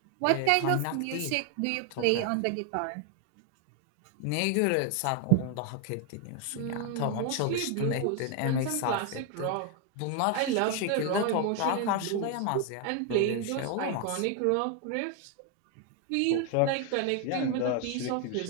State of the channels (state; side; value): different; both; correlation 0.01